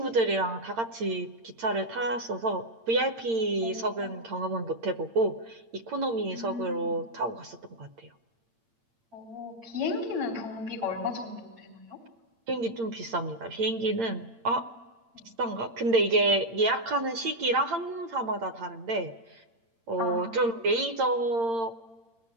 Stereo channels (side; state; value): left; late; 8.8 ms